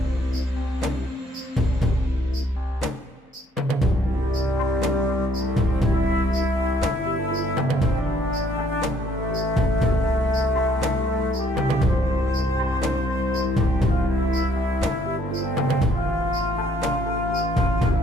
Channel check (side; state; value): both; normal; correlation 0.65